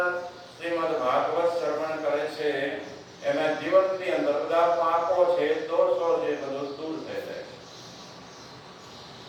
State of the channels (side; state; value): both; identical; correlation 1.00